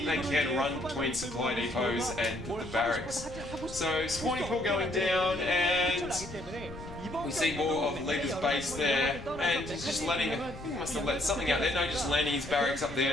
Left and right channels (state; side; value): noise; left; rumble, 13 dB below the sound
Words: they can run between supply depots and the barracks. So spawning pool going down, and we see more of Leta's base there, and he's just letting, I think he must have let something out there, no, just landing his barracks up